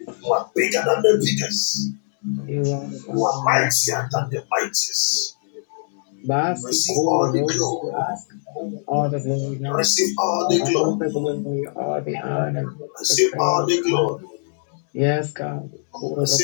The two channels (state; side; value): silent; right; 64 dB below the other